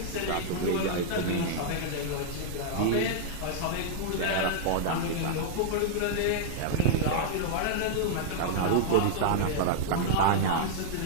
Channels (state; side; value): different; both; correlation -0.01